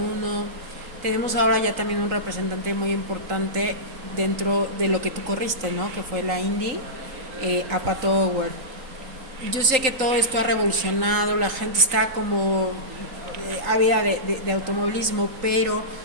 Tenemos ahora ya también un representante muy importante dentro de lo que tú corriste, ¿no? Que fue la Indy, a Pato Howard. Yo sé que todo esto ha revolucionado, la gente está como ávida de automovilismo, pero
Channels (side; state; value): left; late; 3.8 ms